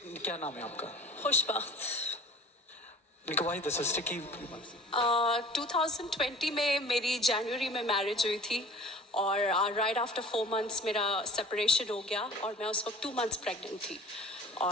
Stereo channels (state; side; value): normal; both; correlation 0.44